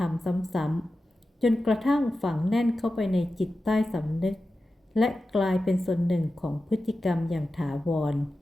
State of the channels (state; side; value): normal; both; correlation 0.93